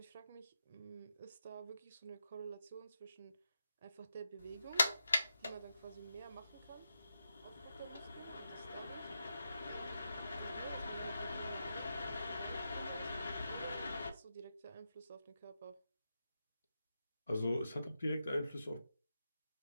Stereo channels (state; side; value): inverted; both; correlation -0.86